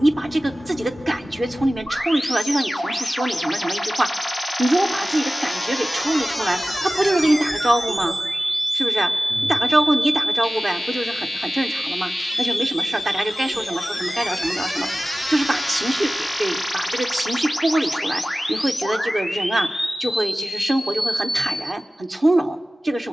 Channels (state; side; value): normal; both; correlation 0.97